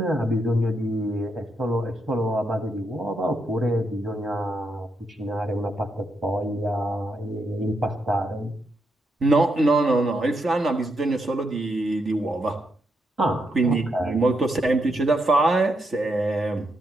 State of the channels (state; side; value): normal; both; correlation 0.81